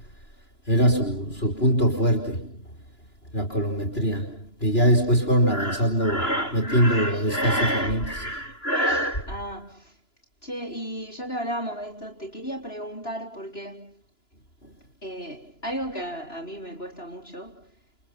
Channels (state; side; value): late; right; 2.9 ms